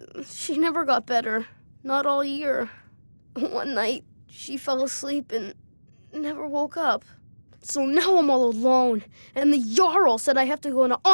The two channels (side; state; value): both; inverted; correlation -1.00